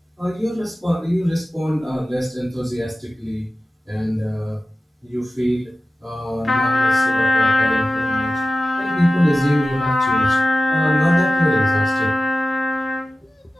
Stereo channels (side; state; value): both; normal; correlation 0.95